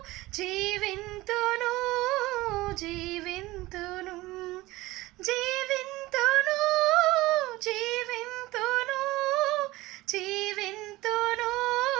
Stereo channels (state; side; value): quieter; left; 19.2 dB